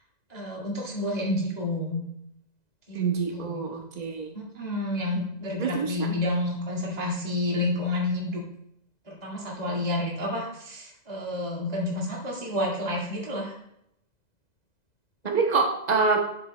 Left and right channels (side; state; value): right; late; 2.0 ms